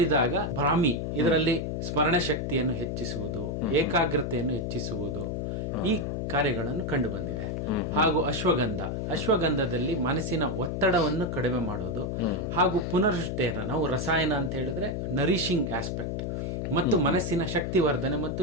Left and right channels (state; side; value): noise; left; hum, 2 dB below the sound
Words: ಬ್ರಾಹ್ಮಿ ಇದರಲ್ಲಿ ಸ್ಮರಣ ಶಕ್ತಿಯನ್ನು ಹೆಚ್ಚಿಸುವುದು, ಏಕಾಗ್ರತೆಯನ್ನು ಹೆಚ್ಚಿಸುವುದು, ಈ ಕಾರ್ಯಗಳನ್ನು ಕಂಡು ಬಂದಿದೆ. ಹಾಗೂ ಅಶ್ವಗಂಧದಲ್ಲಿ ಮನಸ್ಸಿನ ಒತ್ತಡವನ್ನು ಕಡಿಮೆ ಮಾಡೋದು ಹಾಗೂ ಪುನರುಜ್ಜೀವನ, ನಾವು ರಸಾಯನ ಅಂತ ಹೇಳಿದ್ರೆ ನರಿಶಿಂಗ್ ಆಸ್ಪೆಕ್ಟ್ ಮತ್ತು ಮನಸ್ಸಿನ ಶಕ್ತಿವರ್ಧನೆ ಮತ್ತು